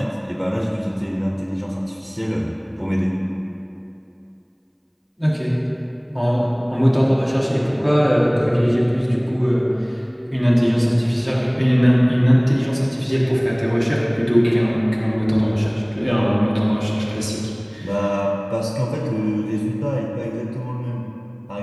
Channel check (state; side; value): identical; both; correlation 1.00